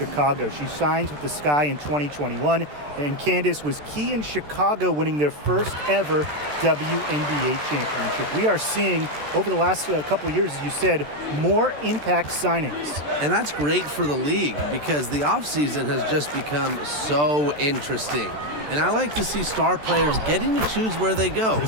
She signs with the Sky in 2021, and Candace was key in Chicago winning their first ever WNBA championship. We are seeing, over the last couple of years, as you said, more impact signings. And that's great for the league because the offseason has just become so interesting. And I like to see star players getting to choose where they go.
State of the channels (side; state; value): left; late; 14 ms